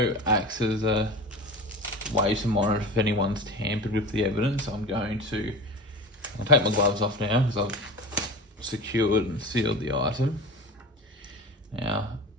acts as a way to monitor if anyone's tampered with the evidence. I'll take my gloves off now because I've secured and sealed the item. Now,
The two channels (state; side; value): normal; both; correlation 0.32